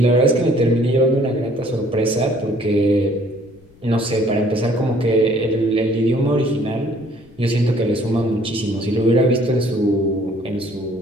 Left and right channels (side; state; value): left; noise; rumble, 28 dB below the sound